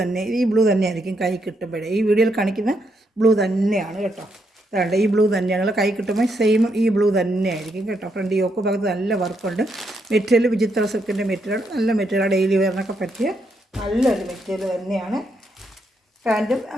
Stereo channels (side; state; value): both; normal; correlation 0.78